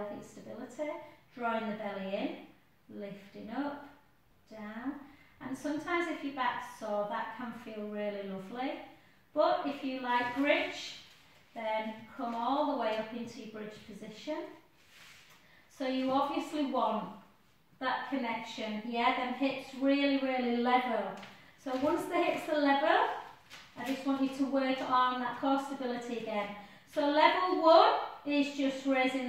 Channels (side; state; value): both; identical; correlation 1.00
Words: stability, drawing the belly in, lifting up, down. And sometimes if your back's sore, that can feel really lovely. But if you like bridge, then come all the way up into your bridge position. So you obviously want that connection, yeah, them hips really, really level. So once the hips are level, I just want you to work on that core stability again. So level 1 is just